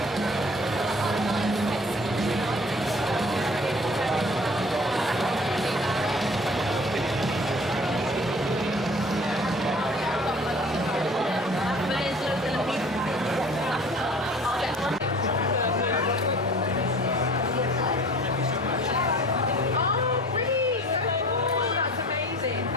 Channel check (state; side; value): normal; both; correlation 0.47